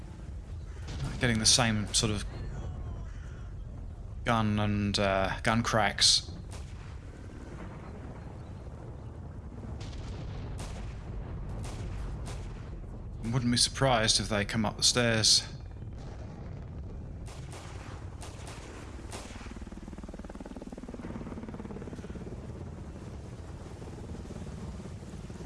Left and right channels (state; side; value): identical; both; correlation 1.00